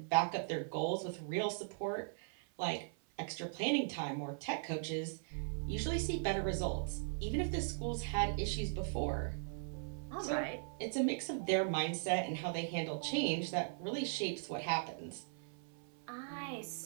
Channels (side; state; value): left; silent; 52 dB below the other